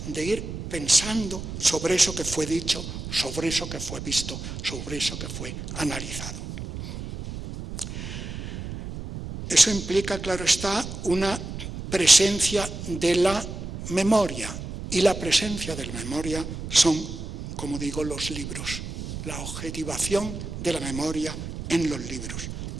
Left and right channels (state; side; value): noise; right; rumble, 8 dB below the sound